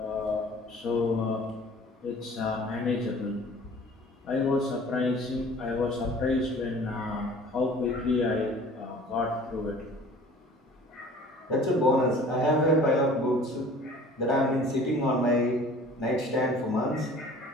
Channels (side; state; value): both; normal; correlation 0.47